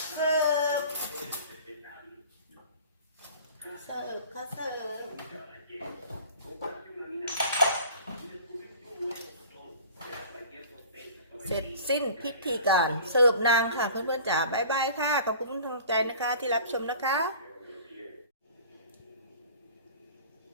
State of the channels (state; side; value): inverted; both; correlation -0.44